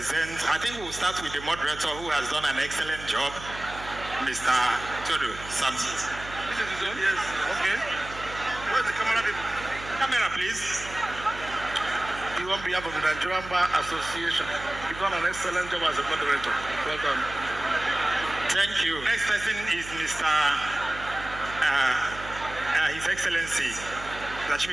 I think we'll start with the moderator who has done an excellent job, Mr. Toru Samson. This is his own? Yes. Okay. Where's the camera? Camera, please. You on behalf of the Nigerian Bar Association, you've done an excellent job as a moderator. Well done. Thank you. Next person is Mr. His Excellency,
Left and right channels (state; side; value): noise; right; hum, 13 dB below the sound